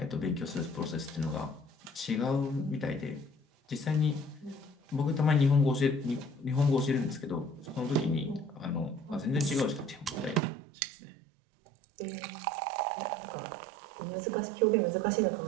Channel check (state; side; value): drops out; left; at 10.4 s